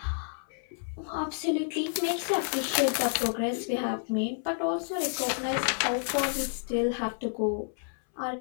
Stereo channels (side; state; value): right; silent; 58 dB below the other